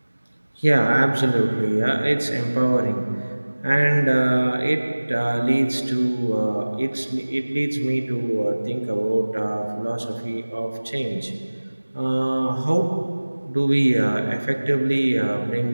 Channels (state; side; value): inverted; both; correlation -1.00